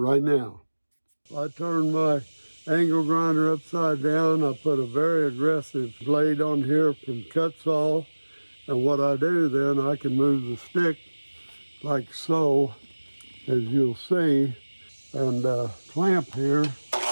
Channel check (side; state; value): both; inverted; correlation -1.00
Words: now. I turned my angle grinder upside down. I put a very aggressive blade on here from cut saw, and what I do then, I can move the stick like so, as you'll see, and clamp here. Keep it